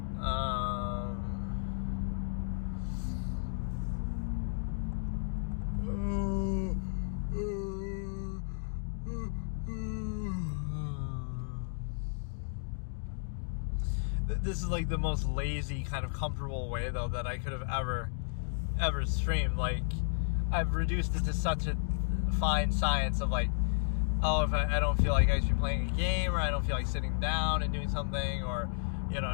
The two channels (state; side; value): silent; right; digital silence